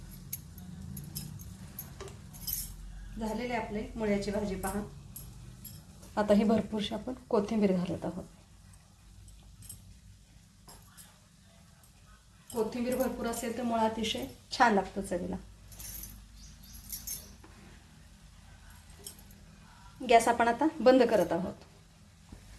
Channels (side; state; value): both; identical; correlation 1.00